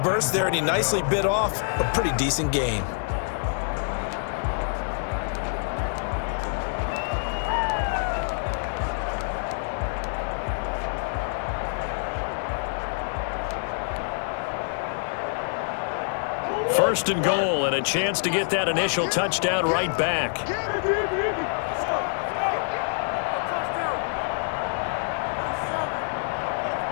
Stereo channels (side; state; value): right; silent; 61 dB below the other